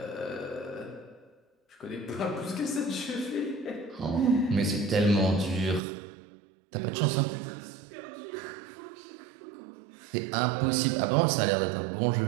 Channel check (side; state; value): left; drops out; at 5.8 s